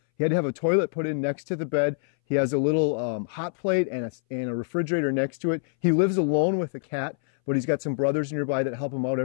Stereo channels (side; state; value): right; silent; 60 dB below the other